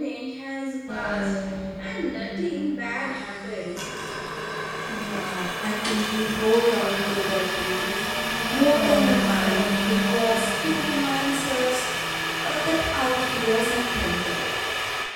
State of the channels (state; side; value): identical; both; correlation 1.00